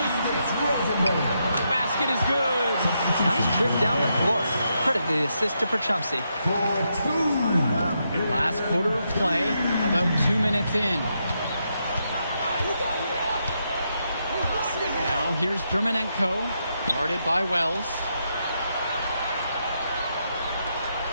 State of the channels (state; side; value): inverted; both; correlation -0.81